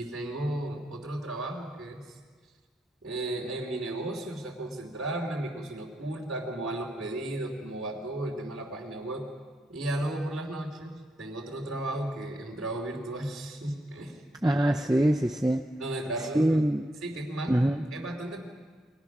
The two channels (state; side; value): normal; both; correlation 0.80